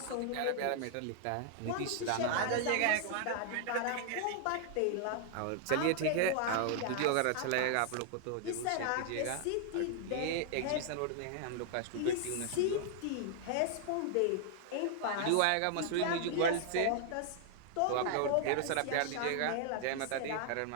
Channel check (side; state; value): both; different; correlation 0.00